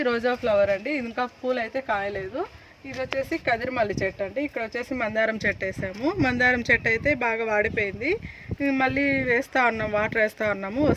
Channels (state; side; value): identical; both; correlation 1.00